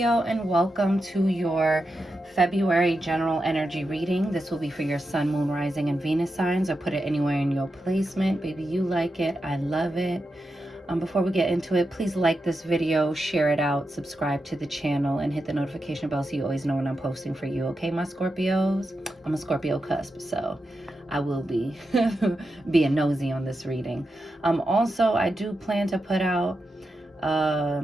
and welcome to your February general energy reading. This will be for your sun, moon, rising, and Venus signs, or put it anywhere in your placement. Baby, you like it. I love it. Before we get into it, please like this video, share it out, subscribe to the channel, and hit the notification bell so you always know when I'm posting for you. Okay, my Scorpios? I'm a Scorpio cusp, so I will be being nosy on this reading. Also, I do plan to put out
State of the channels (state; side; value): normal; both; correlation 0.88